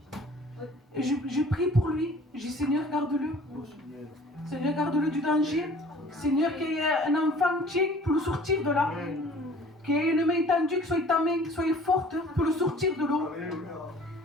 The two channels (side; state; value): both; normal; correlation 0.50